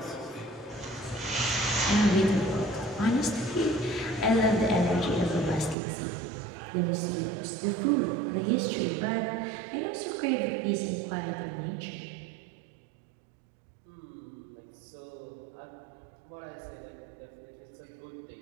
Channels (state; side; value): drops out; left; at 5.8 s